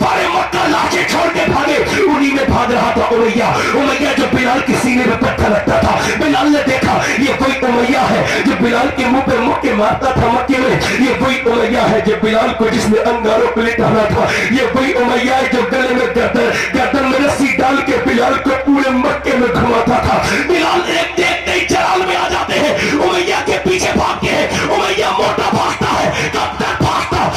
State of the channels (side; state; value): both; identical; correlation 1.00